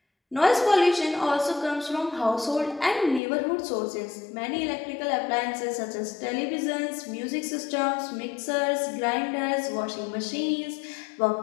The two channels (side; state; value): right; drops out; at 3.2 s